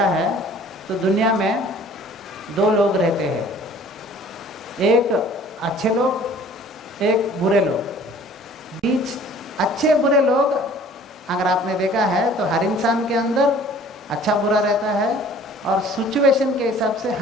है तो दुनिया में दो लोग रहते हैं, एक अच्छे लोग, एक बुरे लोग। बीच अच्छे बुरे लोग अगर आपने देखा है तो हर इंसान के अंदर अच्छा बुरा रहता है, और सिचुएशन के हिसाब से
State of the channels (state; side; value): normal; both; correlation 0.51